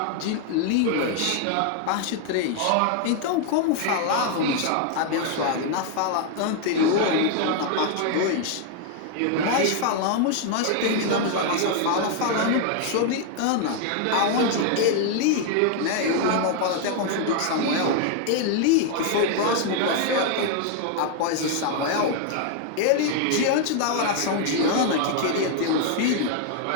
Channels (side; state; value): both; different; correlation 0.00